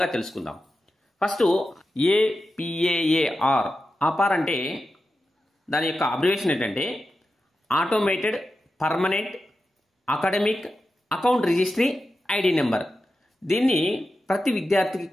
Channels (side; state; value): both; normal; correlation 0.91